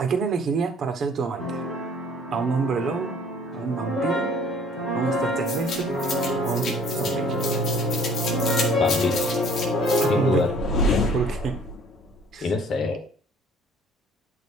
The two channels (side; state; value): both; normal; correlation 0.54